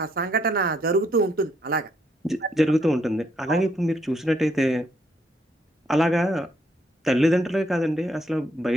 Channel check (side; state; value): both; normal; correlation 0.72